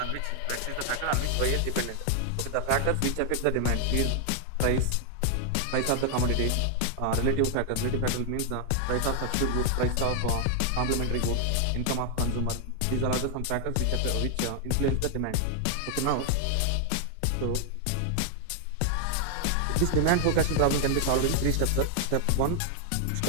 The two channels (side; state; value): both; different; correlation 0.00